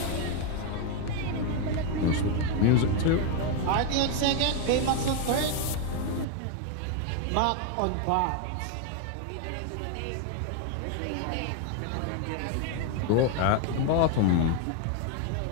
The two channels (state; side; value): different; both; correlation 0.01